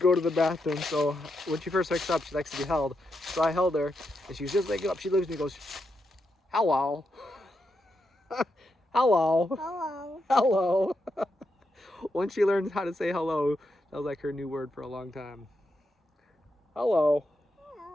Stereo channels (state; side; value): normal; both; correlation 0.84